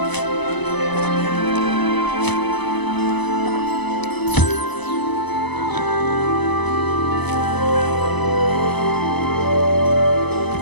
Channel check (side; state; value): right; late; 1.0 ms